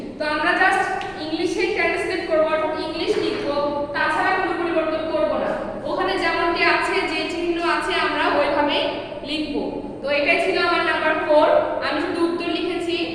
তো আমরা জাস্ট ইংলিশে ট্রান্সলেট করব, ইংলিশ লিখব, তাছাড়া কোনো পরিবর্তন করব না। ওখানে যেমনটি আছে, যে চিহ্ন আছে আমরা ওইভাবেই লিখব। তো এটাই ছিল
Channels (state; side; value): identical; both; correlation 1.00